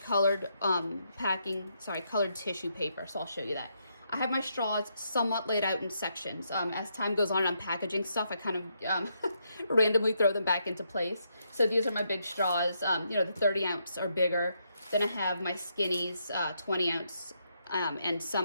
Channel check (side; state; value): both; inverted; correlation -0.78